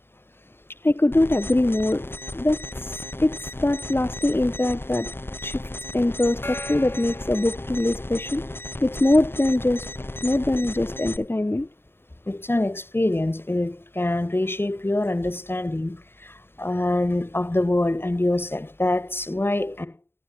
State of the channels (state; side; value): late; right; 0.11 ms